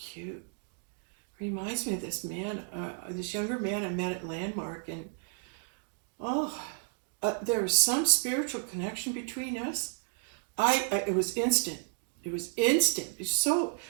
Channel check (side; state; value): left; silent; 56 dB below the other